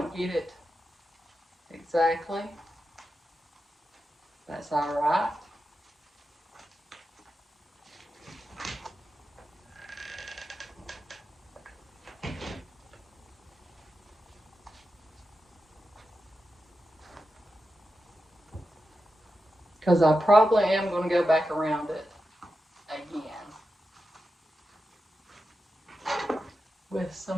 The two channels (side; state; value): both; normal; correlation 0.90